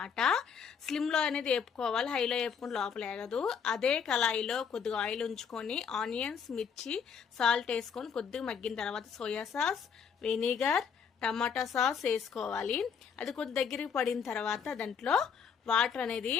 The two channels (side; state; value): right; quieter; 6.8 dB